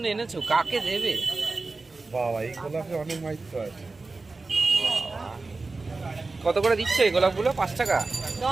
এনেছো, কাকে দেবে? বাবা, এই গোলাপে অনেক মাইত্র আছে। কত করে দিচ্ছ এই গোলাপগুলো? 5 টাকা?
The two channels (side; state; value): left; quieter; 3.7 dB